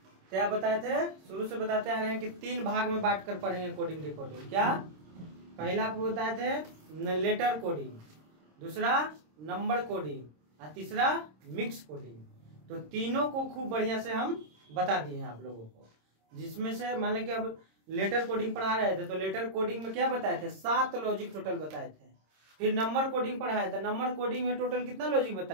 क्या बताए थे, शुरू से बताते आ रहे हैं कि 3 भाग में बांट कर पढ़ेंगे कोडिंग डिकोडिंग। क्या पहला बताए थे लेटर कोडिंग, दूसरा नंबर कोडिंग और तीसरा मिक्स कोडिंग। तो तीनों को खूब बढ़िया से हम बता दिए हैं आप लोगों को, जिसमें से मान लें कि अब लेटर कोडिंग पढ़ा रहे थे तो लेटर कोडिंग में क्या बताए थे, 7 लॉजिक टोटल बताए थे। फिर नंबर कोडिंग पढ़ाया था, नंबर कोडिंग में टोटल कितना लॉजिक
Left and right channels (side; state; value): left; late; 26 ms